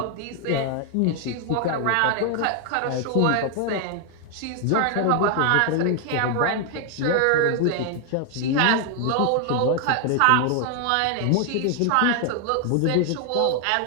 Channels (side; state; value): both; different; correlation 0.00